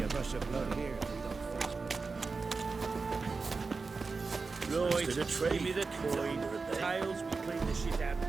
rush of blood here if we don't face me. Right, give me the coin. Tails, we clean the shit out.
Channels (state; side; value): quieter; left; 4.3 dB